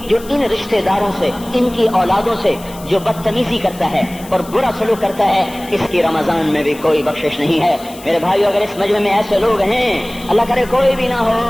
جو ان رشتے داروں سے، ان کی اولادوں سے جو بدتمیزی کرتا ہے اور برا سلوک کرتا ہے، اس کی رمضان میں بھی کوئی بخشش نہیں ہے۔ میرے بھائیو، اگر اس مجمع میں ایسے لوگ ہیں، اللہ کرے کوئی بھی نہ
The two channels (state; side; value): noise; left; hiss, 19 dB below the sound